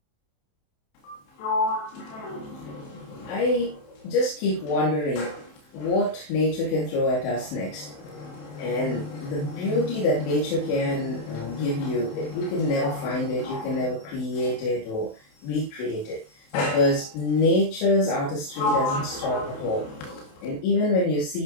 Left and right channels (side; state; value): right; late; 27 ms